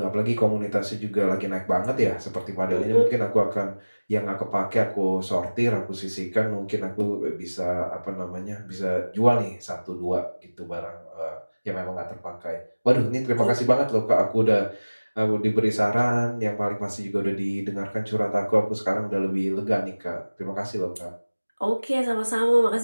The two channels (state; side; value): inverted; both; correlation -1.00